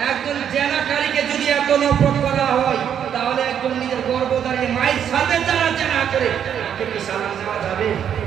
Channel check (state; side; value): quieter; left; 8.9 dB